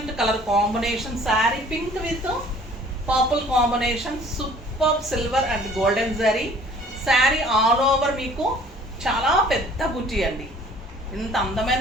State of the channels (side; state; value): both; normal; correlation 0.52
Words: colour combination. Sari pink with purple combination. Super silver and golden zari. Sari all over మీకు చాలా పెద్ద బుటీ అండి, ఇంత